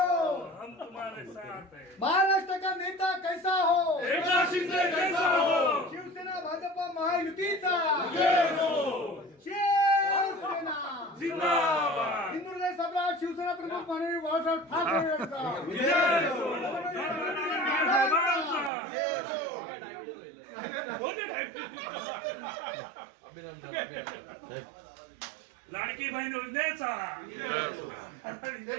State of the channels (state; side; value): drops out; left; at 18.7 s